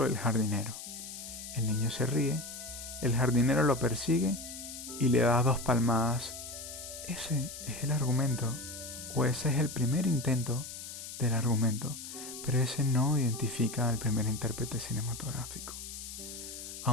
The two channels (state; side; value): noise; left; hiss, 10 dB below the sound